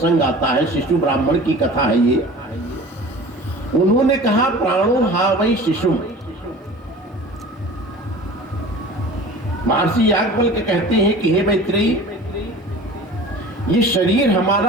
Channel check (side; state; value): both; normal; correlation 0.40